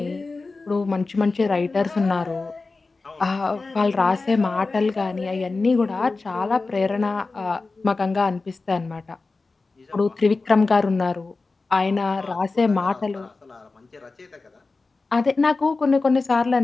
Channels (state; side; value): quieter; right; 3.8 dB